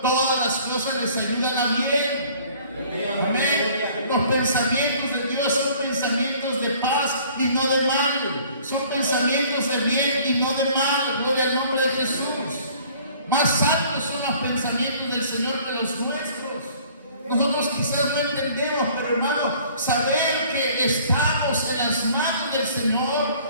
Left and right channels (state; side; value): inverted; both; correlation -0.53